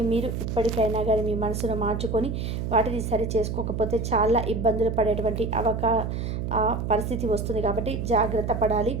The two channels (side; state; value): right; noise; hum, 3 dB below the sound